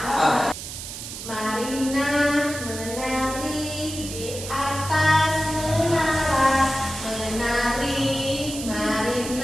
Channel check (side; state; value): right; noise; hiss, 9 dB below the sound